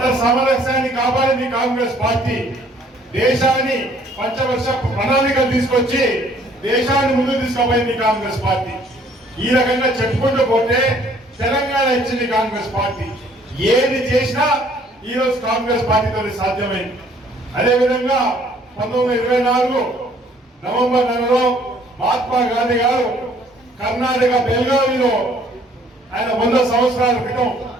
సామరస్యాన్ని కాపాడింది. కాంగ్రెస్ పార్టీ దేశాన్ని పంచవర్ష ప్రణాళికలు తీసుకొచ్చి దేశాన్ని ముందుకు తీసుకుపోయింది కాంగ్రెస్ పార్టీ. ఈ రకంగా చెప్పుకుంటూ పోతే తెలంగాణ ఇచ్చింది కాంగ్రెస్ పార్టీ. ఏది చేసినా ఈ రోజు కాంగ్రెస్ పార్టీతో సాధ్యమైంది. అదేవిధంగా 1924 నవంబర్ నెలలో మహాత్మా గాంధీ గారు కర్ణాటక బెల్గావిలో ఆయన 100 సంవత్సరాల క్రితం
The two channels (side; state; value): both; normal; correlation 0.60